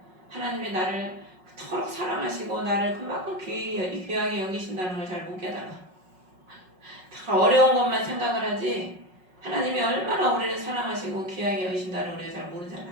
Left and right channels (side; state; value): left; late; 5.4 ms